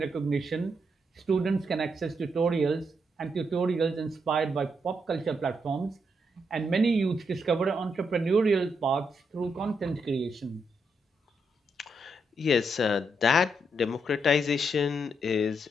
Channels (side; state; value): both; normal; correlation 0.79